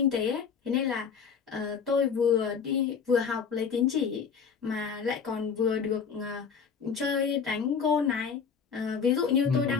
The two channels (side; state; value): right; quieter; 6.4 dB